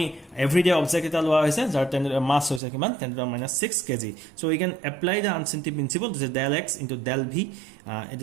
everyday object এটা লোৱা হৈছে যাৰ 10 to the mass হৈছে কিমান 10 to the minus 6 kg. So we can apply the uncertainty principle. This is del x into del v. It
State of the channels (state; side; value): drops out; left; at 2.6 s